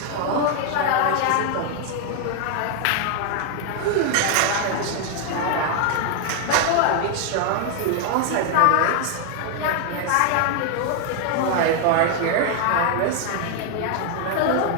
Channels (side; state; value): both; different; correlation 0.00